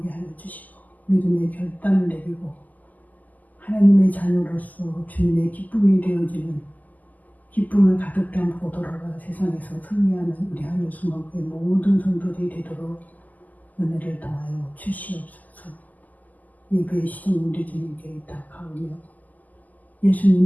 하여 주시고 믿음의 결단을 내리고 하나님의 자녀로서 주님의 기쁨이 되어지는 기쁨을 가득 담고 돌아가 세상에서 승리하는 우리 하늘수목의 모든 성도들이 되도록 은혜를 더하여 주시옵소서. 예배의 시간 우리 주님께 의탁하오며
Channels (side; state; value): right; late; 0.080 ms